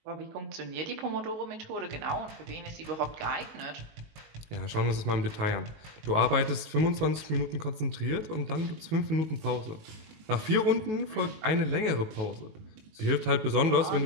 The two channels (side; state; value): left; late; 19 ms